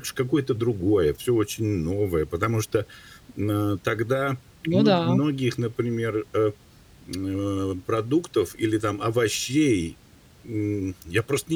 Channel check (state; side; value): identical; both; correlation 1.00